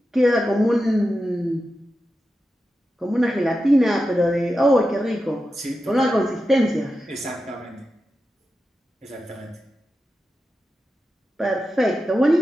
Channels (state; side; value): normal; both; correlation 0.91